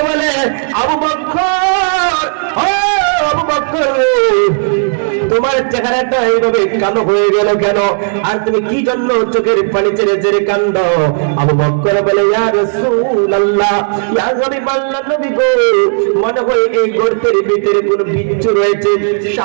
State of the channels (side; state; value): left; silent; digital silence